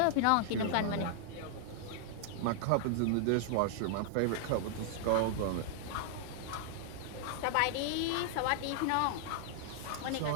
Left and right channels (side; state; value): both; different; correlation -0.01